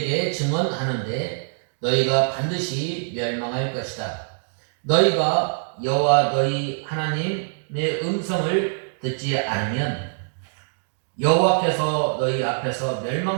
증언하는데 너희가 반드시 멸망할 것이다. 너희가 여호와 너희 하나님의 음성을 듣지 않으면 여호와께서 너희 앞에서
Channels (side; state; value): left; silent; digital silence